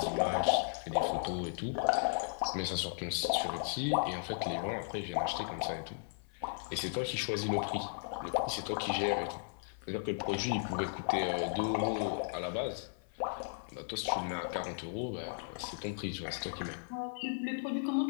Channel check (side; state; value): right; silent; 54 dB below the other